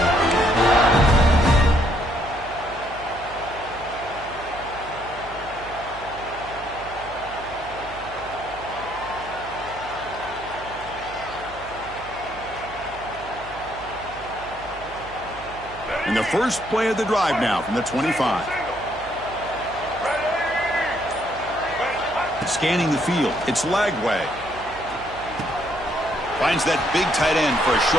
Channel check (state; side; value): noise; right; hum, 17 dB below the sound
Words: And the first play of the drive now from the 25. Scanning the field. It's Lagway. Finds that big tight end for a